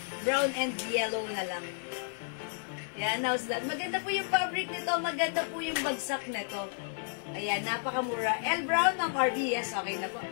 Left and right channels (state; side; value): silent; right; digital silence